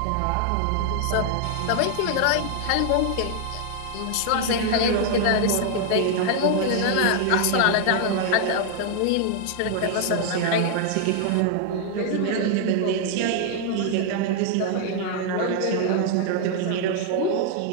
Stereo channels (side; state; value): both; different; correlation 0.00